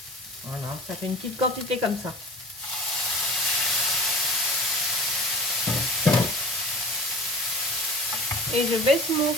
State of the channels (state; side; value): normal; both; correlation 0.38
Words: Voilà, ça fait une petite quantité comme ça. Et je baisse mon